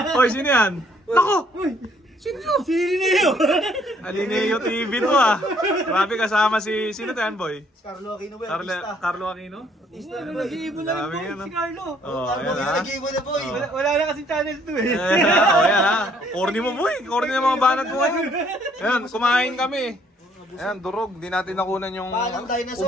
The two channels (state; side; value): normal; both; correlation 0.64